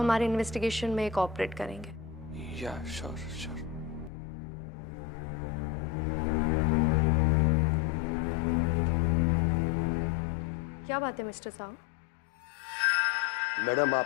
इन्वेस्टिगेशन में कोऑपरेट करेंगे। या श्योर श्योर। क्या बात है मिस्टर साहू? मैडम,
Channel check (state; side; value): drops out; right; at 4.1 s